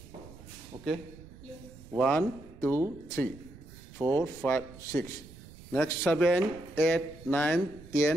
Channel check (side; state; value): right; noise; rumble, 18 dB below the sound